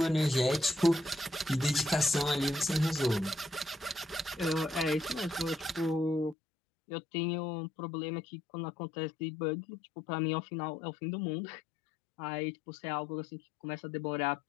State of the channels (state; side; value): drops out; right; at 6.4 s